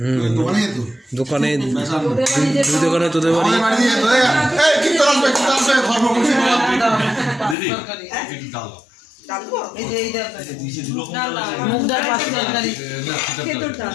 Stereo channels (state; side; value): drops out; right; at 7.6 s